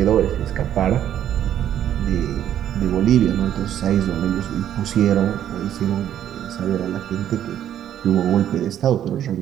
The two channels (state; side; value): quieter; left; 10.8 dB